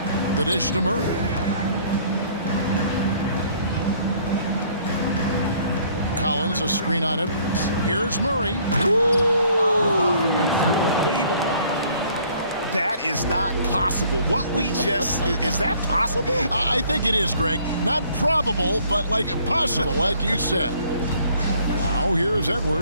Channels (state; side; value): inverted; both; correlation -0.59